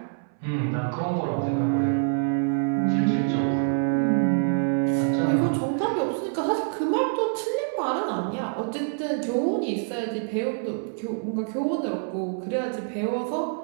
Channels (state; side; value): silent; left; 61 dB below the other